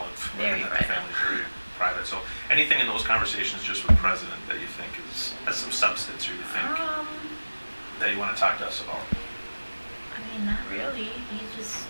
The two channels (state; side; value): inverted; both; correlation -1.00